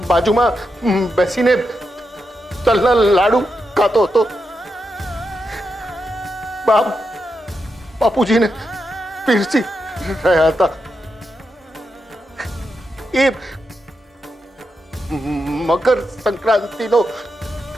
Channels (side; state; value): both; normal; correlation 0.86